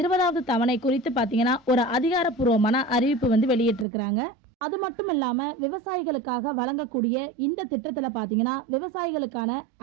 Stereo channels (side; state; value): left; drops out; at 3.9 s